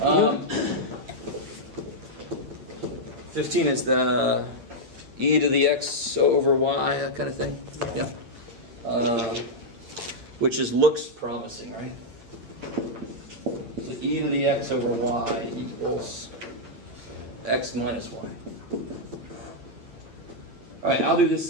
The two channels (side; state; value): left; late; 9.2 ms